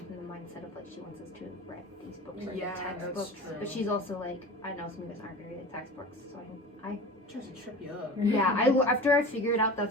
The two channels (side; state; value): both; normal; correlation 0.35